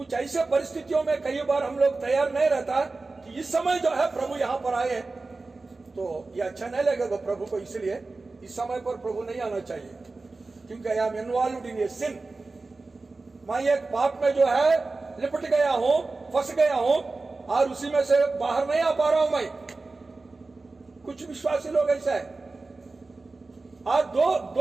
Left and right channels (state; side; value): quieter; left; 3.6 dB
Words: ऐसे परिस्थितियों में कई बार हम लोग तैयार नहीं रहता कि इस समय जो है प्रभु यहाँ पर आए, तो ये अच्छा नहीं लगेगा प्रभु को, इसलिए इस समय पर प्रभु नहीं आना चाहिए, क्योंकि आई एम इन्वॉल्व्ड इन ए सिन। मैं एक पाप में जो है लिपट गया हूं, फंस गया हूं, और उसी में से बाहर नहीं आ पा रहा हूं मैं। कुछ विश्वासी लोग ऐसा है, और